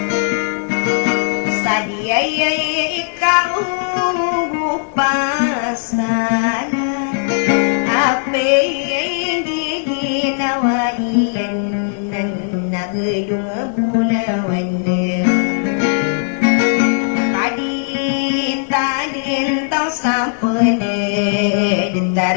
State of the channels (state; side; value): silent; right; digital silence